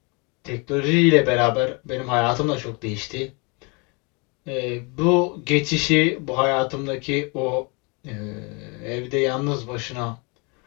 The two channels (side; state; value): right; quieter; 31.0 dB